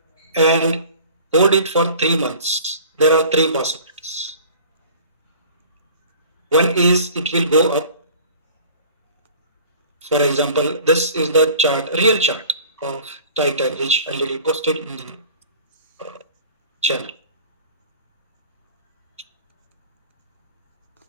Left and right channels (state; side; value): inverted; both; correlation -0.45